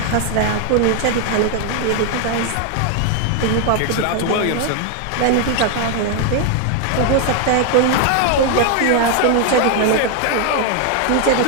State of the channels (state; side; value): different; both; correlation 0.01